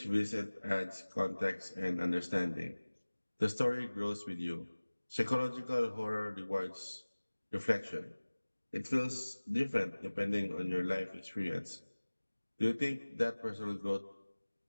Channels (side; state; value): both; inverted; correlation -1.00